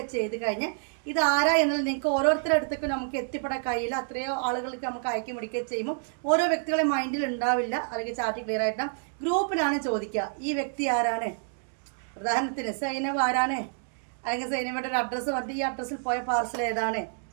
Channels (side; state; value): left; silent; digital silence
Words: ചെയ്ത് കഴിഞ്ഞാൽ ഇത് ആരാ എന്നുള്ളത് നിങ്ങൾക്ക് ഓരോരുത്തരുടെ അടുത്തേക്ക് നമുക്ക് എത്തിപ്പെടാൻ കഴിയില്ല. അത്രയോ ആളുകൾക്ക് നമുക്ക് അയക്കി പിടിക്കുകയും ചെയ്യുമ്പോൾ ഓരോ വ്യക്തികളെ മൈൻഡിൽ ഉണ്ടാവില്ല. അല്ലെങ്കിൽ ചാറ്റ് ക്ലിയർ ആയിട്ട് ഗ്രൂപ്പിലാണ് ചോദിക്കുക, ഈ വ്യക്തി ആരാണ്, ഉദാഹരണത്തിന് സൈനവ് ആരാണ്, അല്ലെങ്കിൽ സൈനവയുടെ ഒരു അഡ്രസ്സ് പറഞ്ഞിട്ട് ഈ അഡ്രസ്സിൽ പോയ പാർസൽ ഏതാണ്,